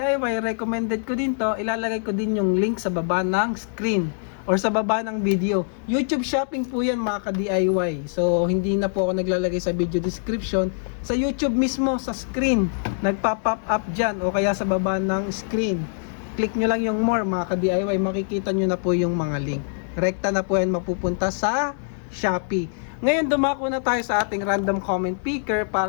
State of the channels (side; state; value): right; silent; 60 dB below the other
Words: Recommended ko din to. Ilalagay ko din yung link sa baba ng screen or sa baba ng video. YouTube shopping po yan mga ka-DIY. So hindi na po ako naglalagay sa video description. Sa YouTube mismo, sa screen, nagpa-pop up dyan o kaya sa baba ng screen. Click nyo lang yung more mga ka-DIY. Makikita nyo na po yung mga link. Rekta na po yan mapupunta sa Shopee. Ngayon dumako na tayo sa ating random comment picker